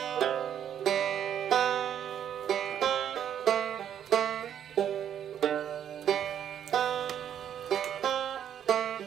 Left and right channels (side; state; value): left; quieter; 9.5 dB